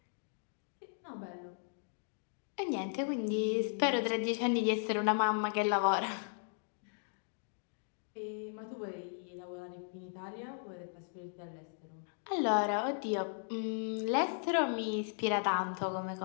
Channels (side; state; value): right; silent; digital silence